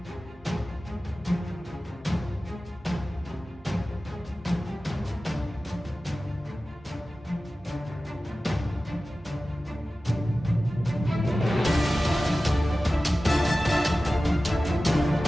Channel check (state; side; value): normal; both; correlation 0.95